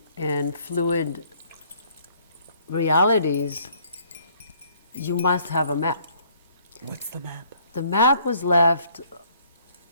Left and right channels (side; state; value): both; inverted; correlation -0.62